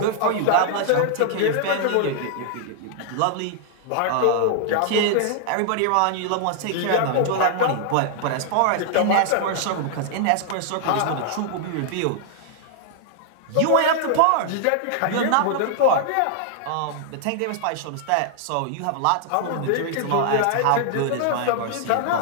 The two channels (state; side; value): different; both; correlation 0.00